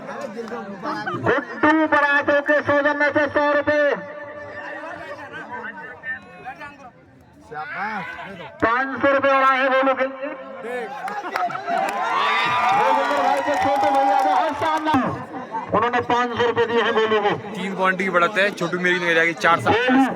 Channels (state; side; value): identical; both; correlation 1.00